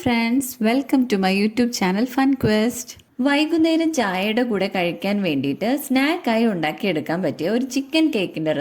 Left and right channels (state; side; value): identical; both; correlation 1.00